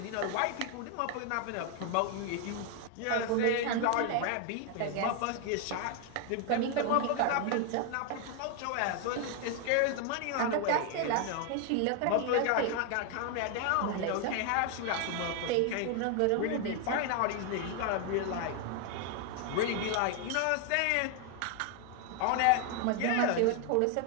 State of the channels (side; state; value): both; different; correlation 0.00